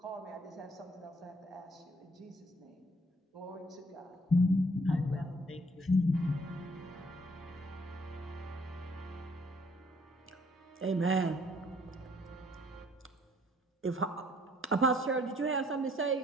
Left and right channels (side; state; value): both; normal; correlation 0.62